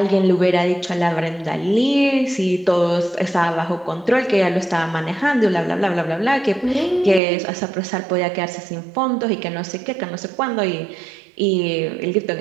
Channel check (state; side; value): drops out; left; at 7.2 s